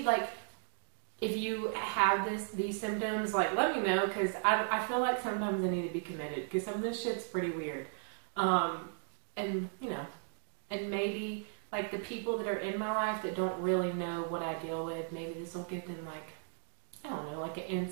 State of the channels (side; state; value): left; silent; digital silence